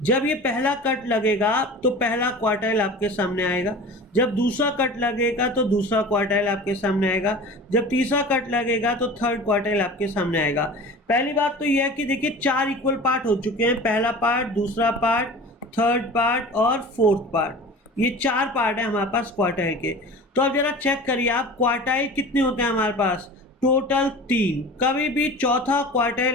जब ये पहला कट लगेगा तो पहला क्वार्टाइल आपके सामने आएगा, जब दूसरा कट लगेगा तो दूसरा क्वार्टाइल आपके सामने आएगा, जब तीसरा कट लगेगा तो थर्ड क्वार्टाइल आपके सामने आएगा। पहली बात तो यह है कि देखिए 4 इक्वल पार्ट हो चुके हैं, पहला पार्ट, दूसरा पार्ट, थर्ड पार्ट और फोर्थ पार्ट। ये 4 पार्ट है हमारे पास क्वार्टाइल के। तो अब जरा चेक करिए आप, क्वार्टाइल कितने होते हैं हमारे पास? टोटल 3। कभी भी चौथा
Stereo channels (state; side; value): normal; both; correlation 0.37